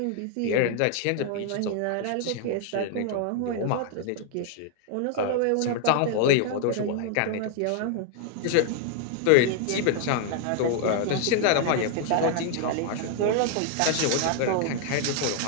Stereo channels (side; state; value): both; different; correlation 0.00